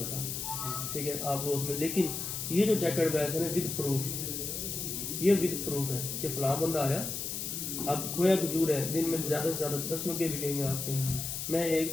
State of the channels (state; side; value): noise; left; hiss, 4 dB below the sound